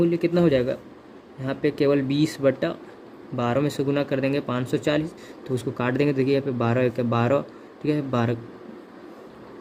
कितना हो जाएगा, यहाँ पे केवल 20/12 में से गुना कर देंगे 540, तो उसको काट देंगे। देखिए यहाँ पे 12 1 12, ठीक है 12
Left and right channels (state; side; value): identical; both; correlation 1.00